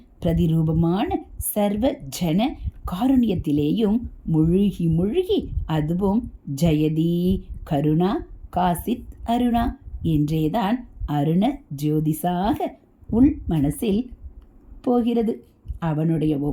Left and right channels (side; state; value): both; identical; correlation 1.00